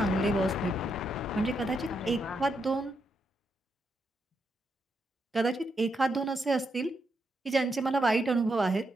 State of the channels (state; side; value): normal; both; correlation 0.81